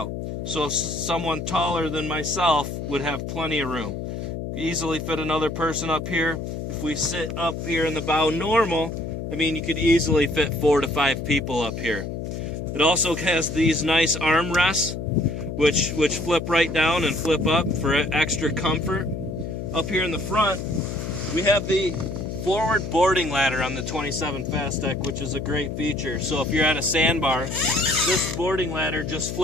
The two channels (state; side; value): noise; left; hum, 5 dB below the sound